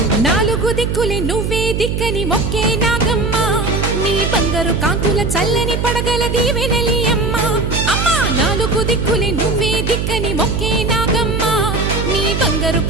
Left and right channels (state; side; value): noise; right; hum, 1 dB below the sound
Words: నాలుగు దిక్కులే నువ్వే దిక్కని మొక్కే నాగమ్మ నీ బంగారు కాంతుల చల్లని పడగల దీవెనలి అమ్మ అమ్మా నాలుగు దిక్కులే నువ్వే దిక్కని మొక్కే నాగమ్మ నీ బంగారు